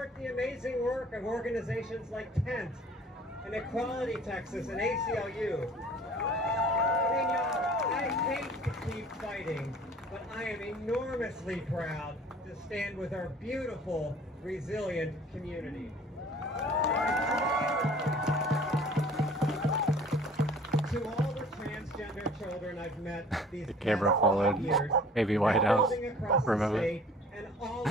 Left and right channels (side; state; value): both; normal; correlation 0.49